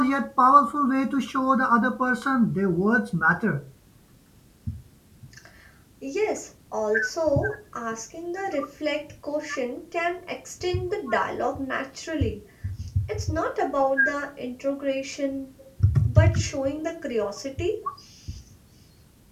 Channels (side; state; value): both; identical; correlation 1.00